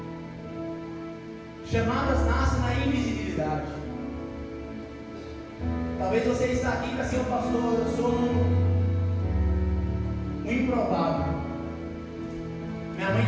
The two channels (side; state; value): both; identical; correlation 1.00